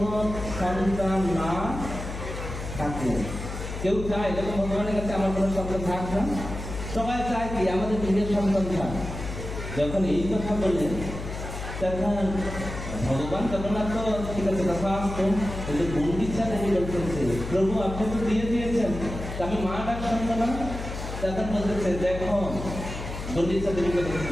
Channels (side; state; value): left; noise; hum, 7 dB below the sound